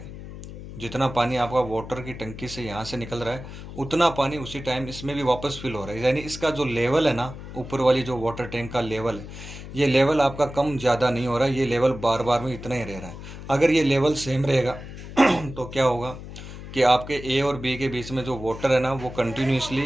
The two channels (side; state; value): left; noise; hum, 12 dB below the sound